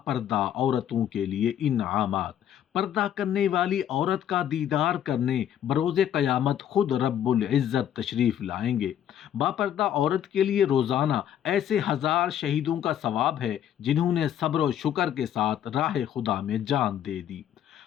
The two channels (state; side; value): quieter; right; 10.3 dB